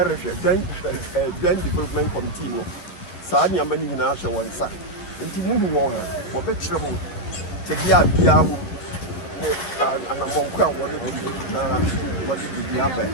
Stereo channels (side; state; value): right; late; 11 ms